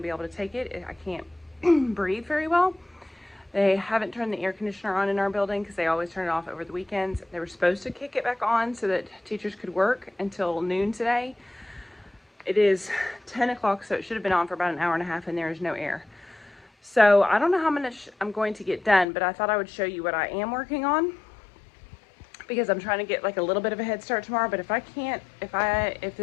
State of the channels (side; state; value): right; drops out; at 19.1 s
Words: be able to take it. I can't breathe very well. They haven't turned the air conditioner on in our building because they always turn it off over the weekends. They were supposed to kick it back on so that teachers could work until noon today. It is 10 o'clock, so it should have been on for about an hour and a half, and there is no air. So I don't know how much I'm going to get done, but I thought I would show you what I am working on, because I'm trying to get like a little bit of a head start tomorrow. But if I can't, if